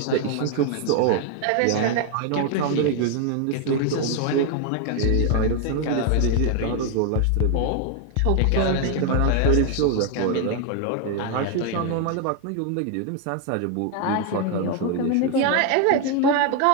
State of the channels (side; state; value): both; different; correlation 0.01